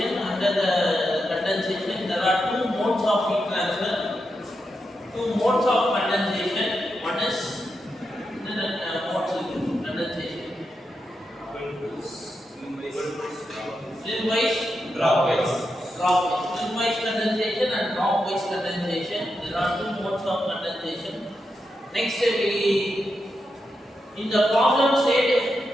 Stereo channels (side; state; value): both; normal; correlation 0.86